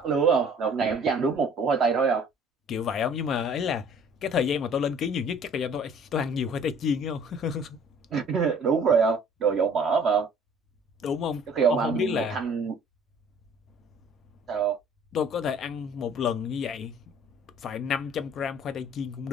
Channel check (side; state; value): both; normal; correlation 0.53